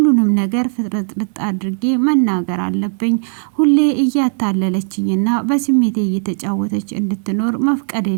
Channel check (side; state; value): left; silent; 58 dB below the other